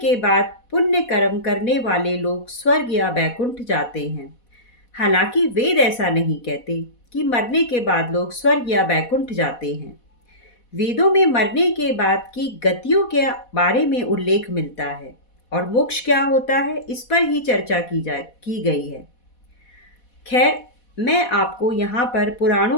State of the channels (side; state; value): right; late; 4.1 ms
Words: बाद पुण्य कर्म करने वाले लोग स्वर्ग या बैकुंठ जाते हैं। हालांकि वेद ऐसा नहीं कहते कि मरने के बाद लोग स्वर्ग या बैकुंठ जाते हैं। वेदों में मरने के बाद की गतियों के बारे में उल्लेख मिलता है और मोक्ष क्या होता है इस पर ही चर्चा की गई है। खैर, मैं आपको यहाँ पर